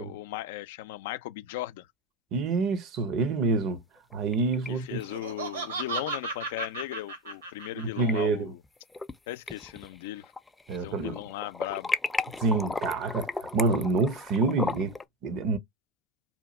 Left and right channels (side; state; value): both; normal; correlation 0.18